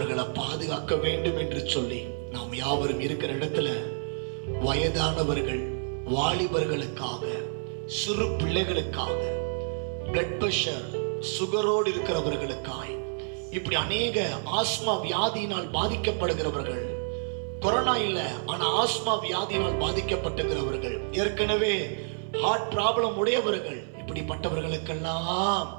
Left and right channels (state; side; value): silent; left; 56 dB below the other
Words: பாதுகாக்க வேண்டும் என்று சொல்லி நாம் யாவரும் இருக்கிற இடத்துல வயதானவர்கள், வாலிபர்களுக்காக, சிறு பிள்ளைகளுக்காக, பிளட் பிரஷர், சுகரோடு இருக்கிறவர்களுக்காய், இப்படி அநேக ஆஸ்மா வியாதியினால் பாதிக்கப்படுகிறவர்கள், கொரோனா இல்ல ஆனா ஆஸ்மா வியாதியினால் பாதிக்கப்பட்டுகிறவர்கள், ஏற்கனவே ஹார்ட் ப்ராப்ளம் உடையவர்கள், இப்படிப்பட்டவர்களுக்கெல்லாம்